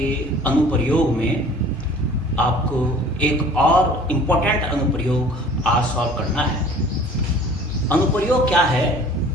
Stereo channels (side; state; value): both; normal; correlation 0.48